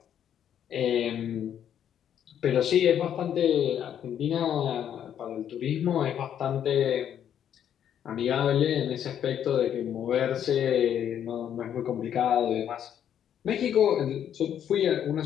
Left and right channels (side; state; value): right; quieter; 9.6 dB